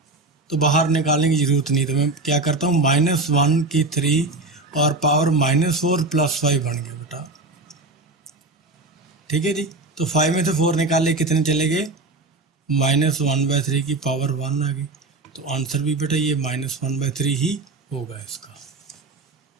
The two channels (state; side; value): quieter; left; 3.1 dB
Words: तो बाहर निकालने की जरूरत नहीं। तो मैं क्या करता हूँ? -1 की 3 और पावर -4 + 5 बन गया बेटा। ठीक है जी। तो 5 में से 4 निकाले, कितने चले गए? -1/3 की पावर 1 आ गई। तो आंसर भी बेटा ये -1/3 ही होगा इसका।